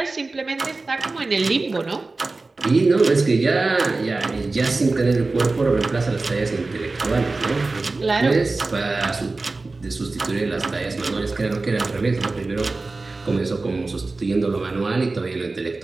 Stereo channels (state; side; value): quieter; left; 3.5 dB